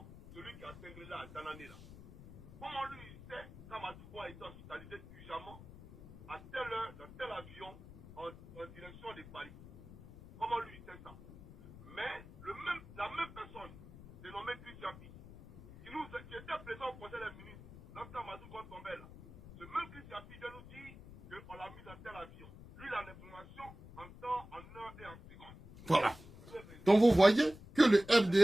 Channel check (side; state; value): left; noise; rumble, 17 dB below the sound